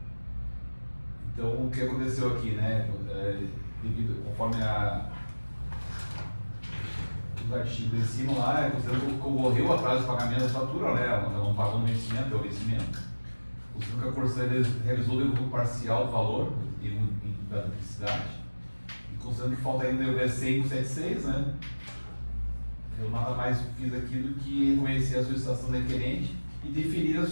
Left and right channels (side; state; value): both; inverted; correlation -1.00